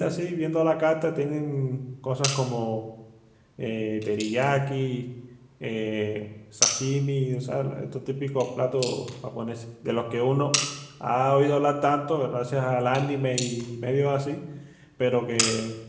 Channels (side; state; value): both; identical; correlation 1.00